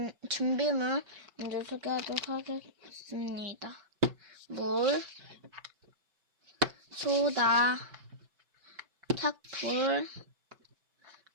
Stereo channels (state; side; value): late; left; 5.2 ms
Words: 준비물 먼저 소개하도록 하겠습니다. 물, 소다, 탁풀,